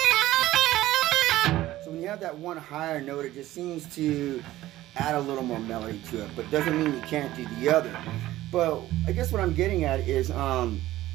So when you have that one higher note, it just seems to add a little more melody to it, but doesn't mean you can't do the other. But I guess what I'm getting at is,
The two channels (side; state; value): left; quieter; 15.5 dB